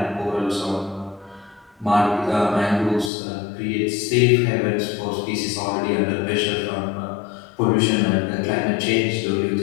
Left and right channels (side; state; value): right; drops out; at 3.1 s